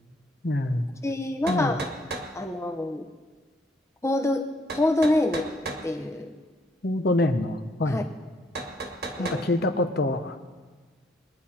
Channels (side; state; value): both; normal; correlation 0.69